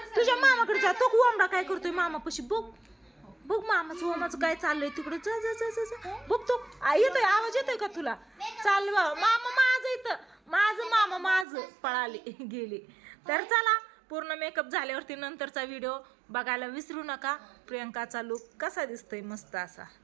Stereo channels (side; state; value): left; drops out; at 11.5 s